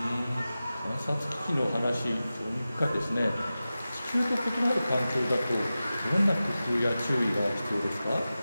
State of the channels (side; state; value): both; inverted; correlation -0.95